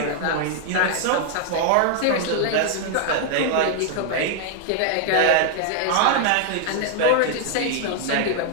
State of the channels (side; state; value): both; different; correlation 0.00